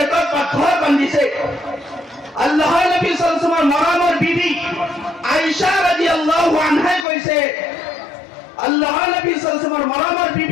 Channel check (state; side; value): drops out; right; at 7.1 s